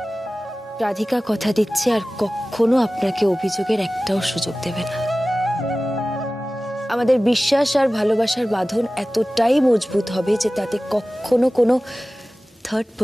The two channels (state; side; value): normal; both; correlation 0.97